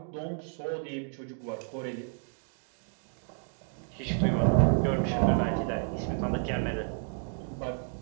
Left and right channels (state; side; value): silent; left; 57 dB below the other